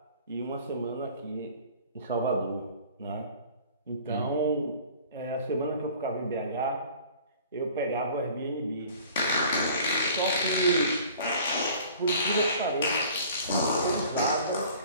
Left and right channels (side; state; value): both; inverted; correlation -0.48